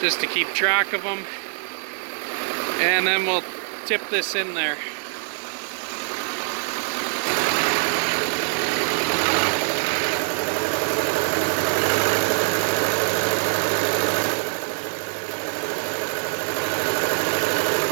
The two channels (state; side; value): silent; left; digital silence